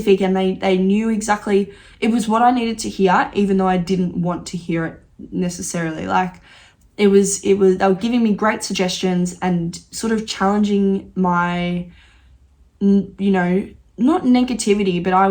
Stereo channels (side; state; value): both; identical; correlation 1.00